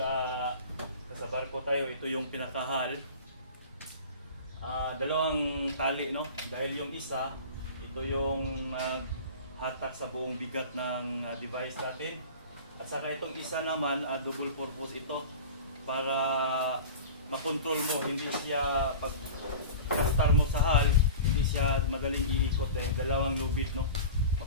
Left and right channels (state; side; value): inverted; both; correlation -0.35